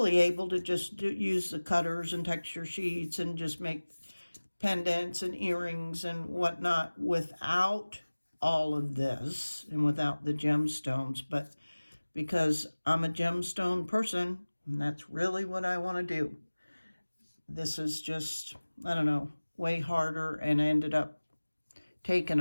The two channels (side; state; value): both; inverted; correlation -1.00